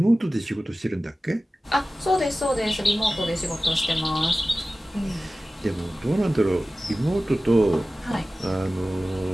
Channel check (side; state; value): both; normal; correlation 0.96